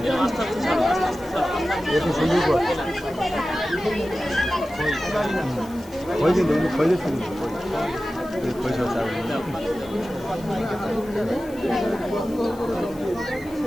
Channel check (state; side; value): noise; left; hiss, 23 dB below the sound